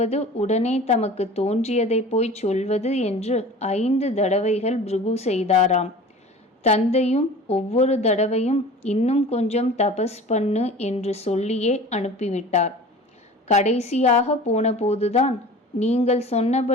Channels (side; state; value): both; normal; correlation 0.40